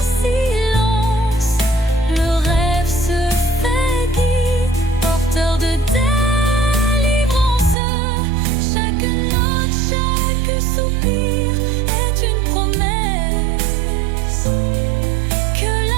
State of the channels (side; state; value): left; drops out; at 7.8 s